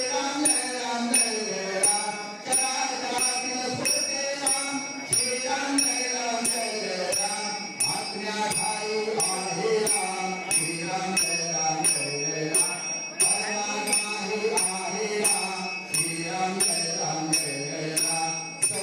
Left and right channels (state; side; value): identical; both; correlation 1.00